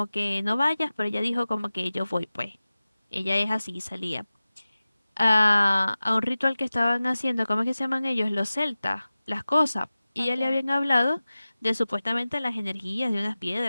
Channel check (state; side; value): inverted; both; correlation -0.96